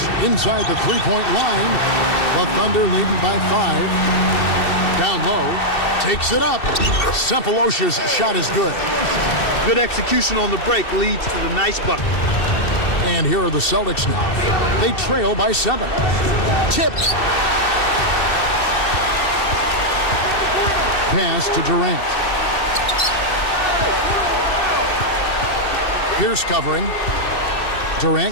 inside the three-point line. The Thunder leading by 5. Down low. Takes it up. Sempolosha's shot is good. Good execution on the break leads to the nice bucket. And here are the Celtics now. They trail by 7. Tipped. Pass to Durant. Pierce covering.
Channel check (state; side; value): late; right; 2.7 ms